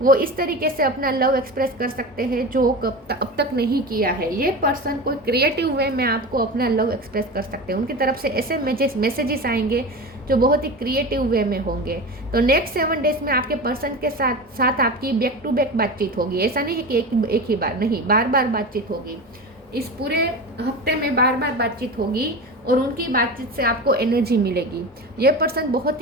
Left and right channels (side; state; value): both; normal; correlation 0.27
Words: वो इस तरीके से अपना लव एक्सप्रेस कर सकते हैं जो अब तक नहीं किया है। ये पर्सन कोई क्रिएटिव वे में आपको अपना लव एक्सप्रेस कर सकते हैं। उनकी तरफ से ऐसे मैसेजेस आएंगे जो बहुत ही क्रिएटिव वे में होंगे। तो नेक्स्ट 7 डेज में आपके पर्सन के साथ आपकी बैक टू बैक बातचीत होगी। ऐसा नहीं है कि एक ही बार, नहीं, बार बार बातचीत होगी। इस पूरे हफ्ते में बार बार बातचीत होगी और उनकी बातचीत से आपको एनर्जी मिलेगी। ये पर्सन बहुत